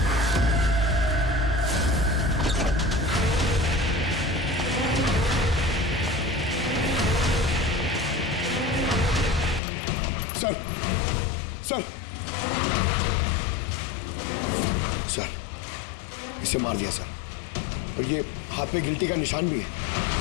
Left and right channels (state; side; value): drops out; right; at 9.6 s